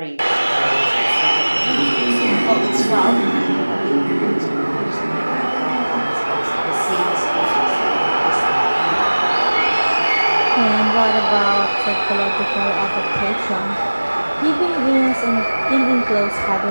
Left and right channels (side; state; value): both; inverted; correlation -1.00